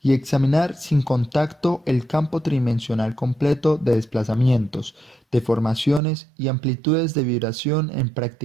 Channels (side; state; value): left; drops out; at 6.0 s